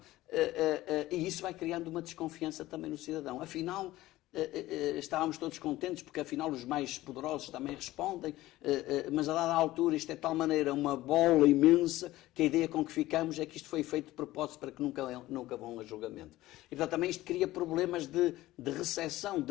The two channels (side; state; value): right; quieter; 16.7 dB